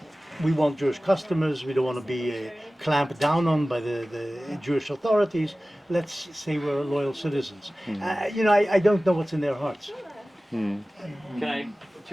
we want Jewish customers, we don't want to be clamped down on by the Jewish authorities. Let's say we're loyal citizens. I don't know what's in their hearts. Can I,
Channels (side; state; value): both; normal; correlation 0.97